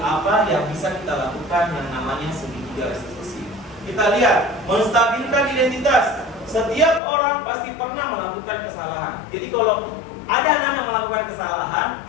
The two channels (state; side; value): drops out; right; at 7.0 s